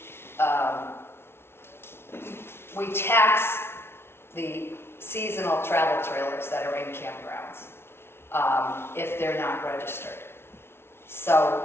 We tax the seasonal travel trailers that are in campgrounds if they're not registered.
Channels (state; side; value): late; right; 0.12 ms